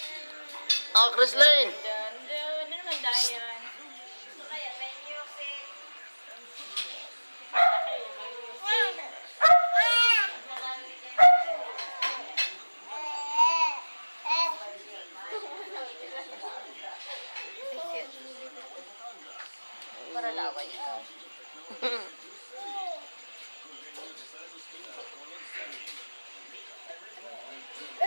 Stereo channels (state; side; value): inverted; both; correlation -1.00